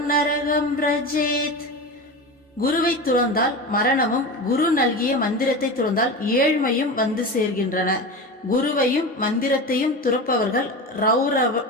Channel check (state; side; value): normal; both; correlation 0.26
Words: நரகம் ரஜேத். குருவை துறந்தால் மரணமும் குரு நல்கிய மந்திரத்தை துறந்தால் ஏழ்மையும் சேர்கின்றன. குருவையும் மந்திரத்தையும் துறப்பவர்கள்